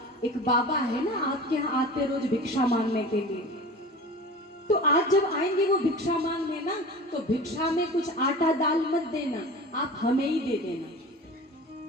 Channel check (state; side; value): normal; both; correlation 0.36